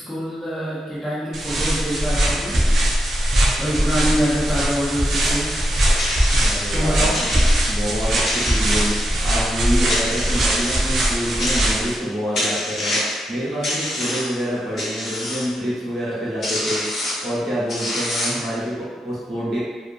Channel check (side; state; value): both; normal; correlation 0.84